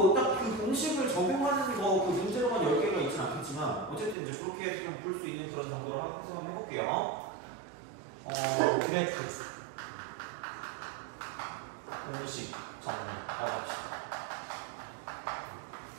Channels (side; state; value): left; drops out; at 4.2 s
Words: 딱 그 공식을 적용하는 거 그 문제로만 10개가 있진 않겠지만 어쨌든 이제 그렇게 해서 좀 볼 수 있는 그런 정도로 해서 한번 해볼게요. 그래프 공식 정리라고 합시다.